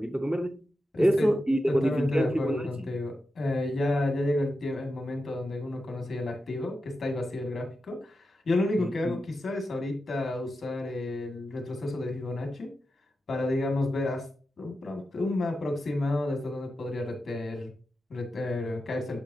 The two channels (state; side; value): normal; both; correlation 0.90